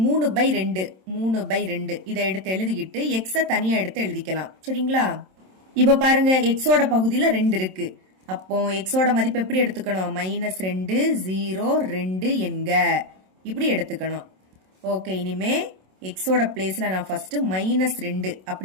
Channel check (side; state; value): left; late; 27 ms